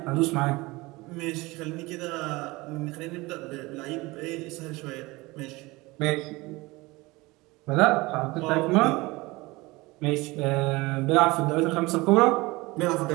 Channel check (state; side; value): quieter; left; 22.2 dB